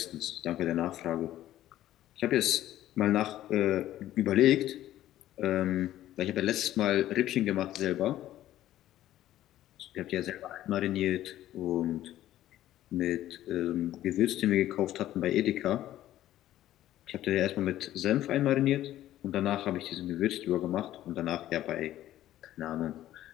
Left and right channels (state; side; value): quieter; right; 13.4 dB